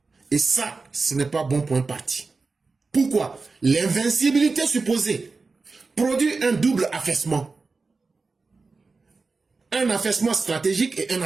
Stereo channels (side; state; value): left; quieter; 4.1 dB